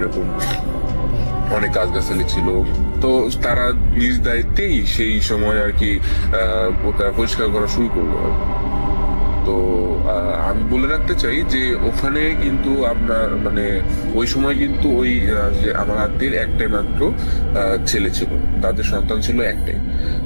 অনেক গাছগাছালি ছিল। তো তারা নিজ দায়িত্বেই সেই সময় আর কি ওটা পরিষ্কার করা শুরু করলো। তো আমি বলে রাখতে চাই যে ওখানে কিন্তু আপনার মানে ওই সময় কিন্তু ওই যে আমার আত্মীয়ের একটাই মাত্র ছেলে ছিল, তাদের সন্তান ছিল একটাই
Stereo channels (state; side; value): inverted; both; correlation -1.00